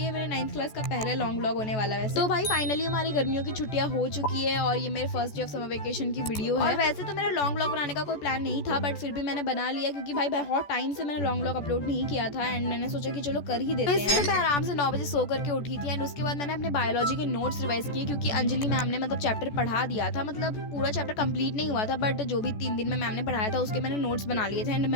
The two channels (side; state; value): right; late; 14 ms